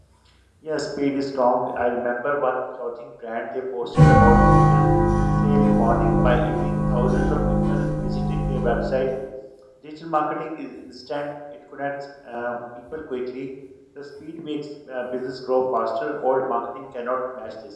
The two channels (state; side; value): identical; both; correlation 1.00